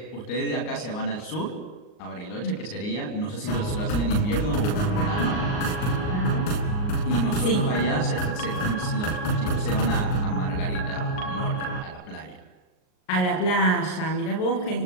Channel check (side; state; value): right; late; 38 ms